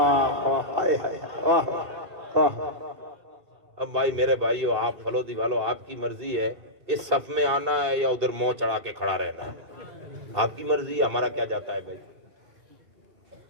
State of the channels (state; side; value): late; left; 2.7 ms